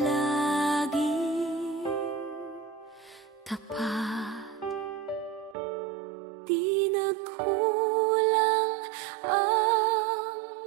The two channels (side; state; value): left; drops out; at 5.6 s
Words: tapat. Di nagkulang ang